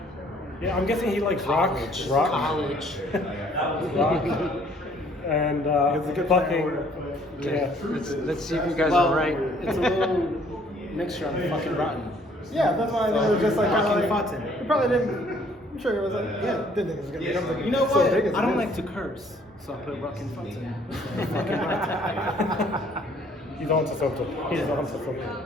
yeah, I'm guessing he likes rock. College. Rock. And It's a good fucking. plan. Yeah. Let's see if you guys are right. It's a little mixture of fucking rotten. Yeah, that's why they were just like Rucking kind of Fotten. He probably didn't. I'm sure it was like, yeah, didn't think it was gonna become like You know so what? big as I it don't is. like to curse, so I put Rucking Fotten. He's on to something. He's on to something.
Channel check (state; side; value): normal; both; correlation 0.60